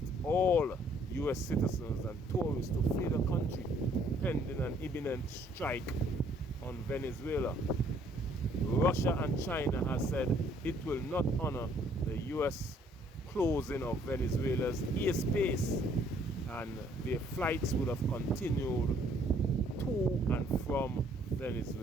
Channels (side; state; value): both; normal; correlation 0.63